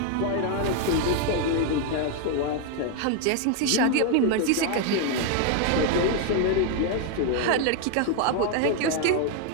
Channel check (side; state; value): both; different; correlation 0.00